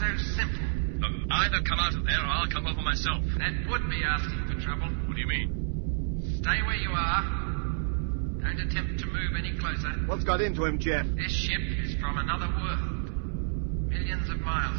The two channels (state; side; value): silent; left; 58 dB below the other